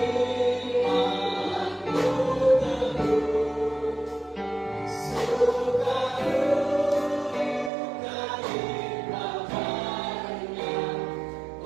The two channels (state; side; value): drops out; left; at 7.7 s